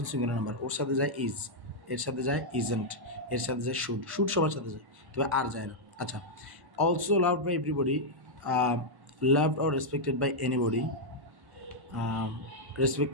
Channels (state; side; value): late; left; 1.1 ms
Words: সিঙ্গুলার নাম্বার, ওর সাথে যায় ইজ, এর সাথে যায় ইজেন্ট, এর সাথে যায় শুড, শুড সবার সাথে যায়, তবে আর যায় না। আচ্ছা, also loved by everybody, loved or respected by anybody,